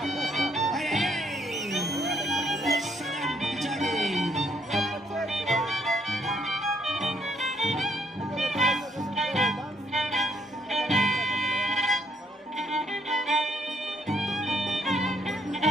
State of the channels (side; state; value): both; normal; correlation 0.70